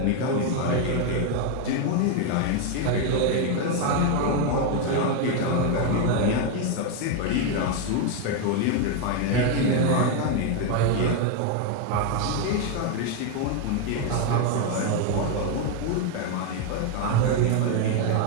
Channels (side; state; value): both; different; correlation 0.01